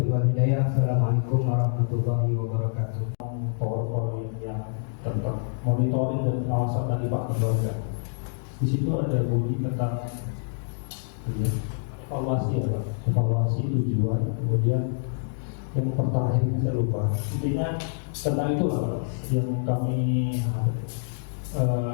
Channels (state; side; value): silent; right; digital silence